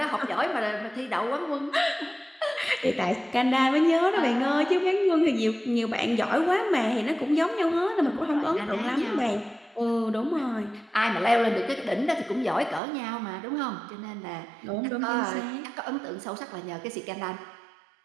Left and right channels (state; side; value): drops out; left; at 12.8 s